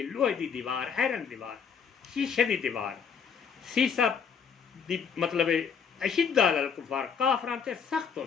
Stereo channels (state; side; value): quieter; right; 6.7 dB